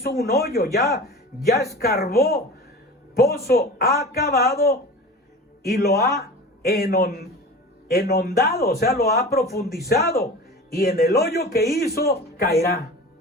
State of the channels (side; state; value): both; normal; correlation 0.35